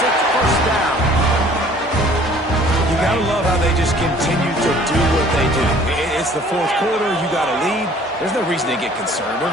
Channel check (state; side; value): normal; both; correlation 0.53